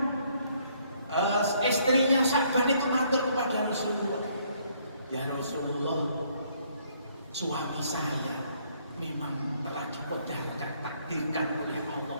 istrinya Sya'ban itu matur kepada Rasulullah, ya Rasulullah, suami saya memang telah dikodarkan, takdirkan oleh Allah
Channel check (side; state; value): both; inverted; correlation -0.67